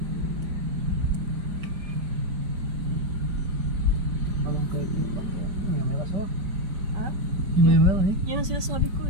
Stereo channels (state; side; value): late; left; 5.0 ms